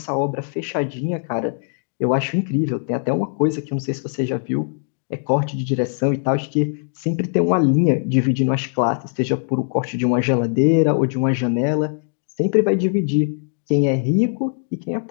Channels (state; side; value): silent; right; digital silence